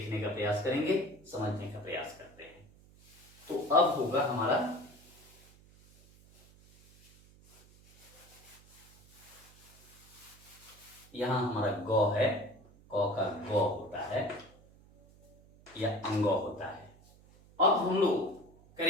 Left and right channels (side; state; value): right; noise; hum, 25 dB below the sound